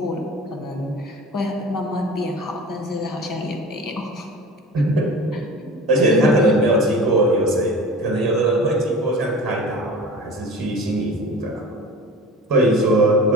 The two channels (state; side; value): normal; both; correlation 0.37